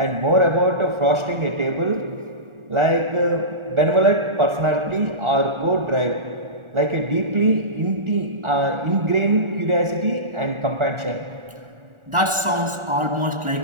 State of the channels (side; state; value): left; late; 1.4 ms